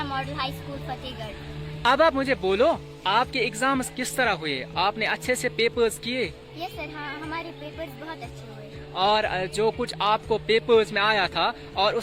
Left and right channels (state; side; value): identical; both; correlation 1.00